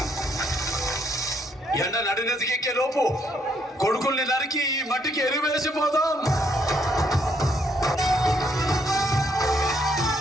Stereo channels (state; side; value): normal; both; correlation 0.71